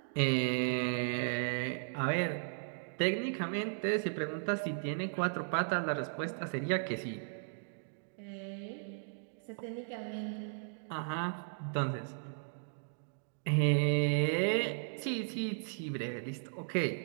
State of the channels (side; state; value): left; silent; digital silence